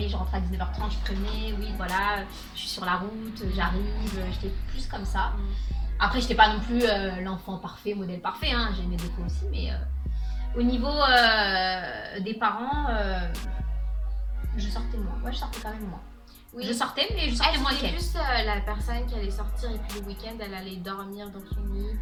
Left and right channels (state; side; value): identical; both; correlation 1.00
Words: je rentrais à 19h30 je prévenais, oui voilà, je suis sur la route, j'arrive, j'étais plus comme ça. Après j'étais pas non plus l'enfant parfait, modèle parfait, hein. J'ai mes défauts aussi, mais... Au niveau des parents, je sortais moins. Moi, je sortais quand même moins. Oui. Je sortais, mais je sortais moins c'était qu'elle. plus la personne qui allait sortir et puis le week-end, elle allait dormir dans son lit.